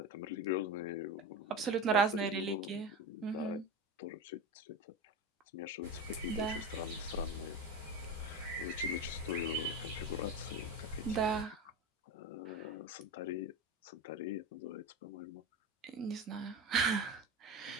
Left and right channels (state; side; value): normal; both; correlation 0.23